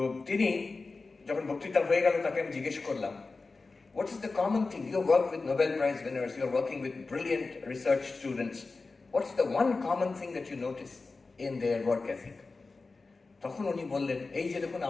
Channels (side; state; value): right; quieter; 3.9 dB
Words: তিনি যখন বক্তৃতা হয়ে গেল, তাকে আমি জিজ্ঞেস করলাম, what is the common thing? You work with Nobel Prize winners, you are working with brilliant research students. What's the one common thing that you notice in their work ethic? তখন উনি বললেন, এই যে দেখুন